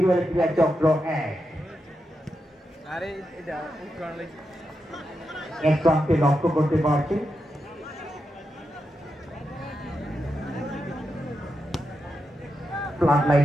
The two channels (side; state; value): both; normal; correlation 0.87